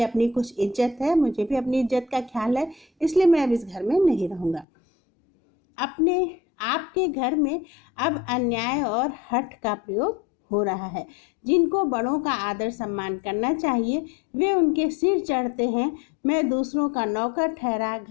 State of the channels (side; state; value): right; drops out; at 4.7 s